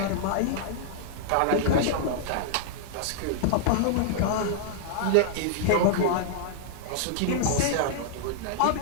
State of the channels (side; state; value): both; different; correlation -0.01